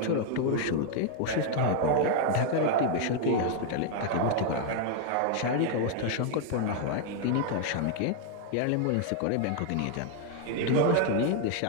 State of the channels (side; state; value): both; different; correlation 0.00